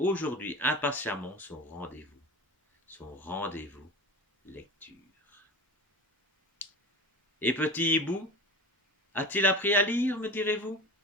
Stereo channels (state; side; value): normal; both; correlation 0.31